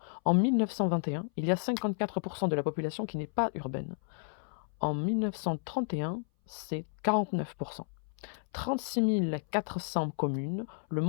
En 1921, il y a 54% de la population qui n'est pas urbaine. En 1931, c'est 49%. 36 400 communes, le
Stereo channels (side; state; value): right; silent; 56 dB below the other